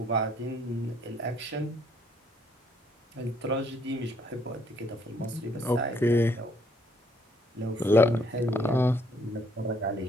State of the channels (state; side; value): normal; both; correlation 0.67